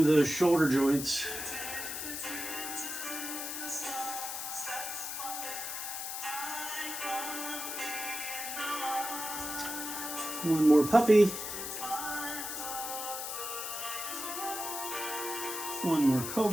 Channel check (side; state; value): left; noise; hiss, 5 dB below the sound